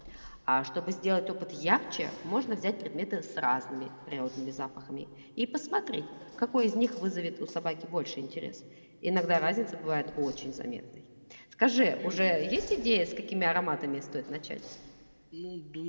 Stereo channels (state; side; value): inverted; both; correlation -1.00